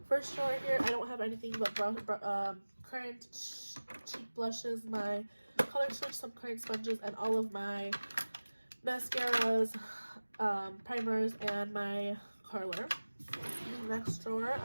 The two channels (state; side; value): inverted; both; correlation -1.00